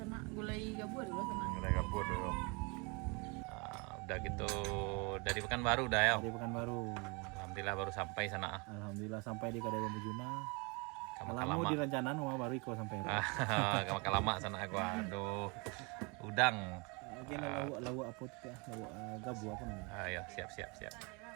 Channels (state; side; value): quieter; left; 30.3 dB